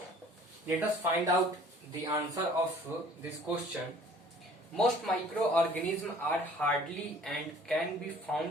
let us find out the answer of this question. Most microorganisms are hardy and can be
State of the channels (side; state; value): both; normal; correlation 0.52